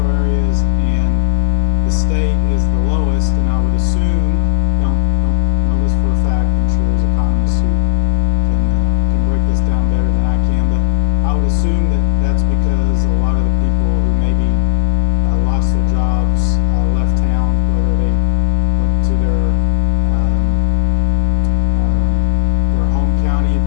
areas and the state is the lowest, and I would assume, don't know this for a fact, I'm sure there's economists who can break this down better than I can, but I would assume that that's because a lot of the people who maybe lost their jobs, left town, whether they went to their home county if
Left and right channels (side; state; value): right; silent; digital silence